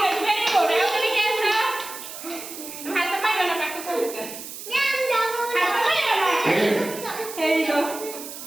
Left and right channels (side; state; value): right; noise; hiss, 11 dB below the sound